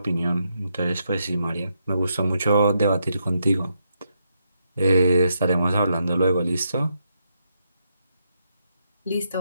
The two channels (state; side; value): inverted; both; correlation -0.80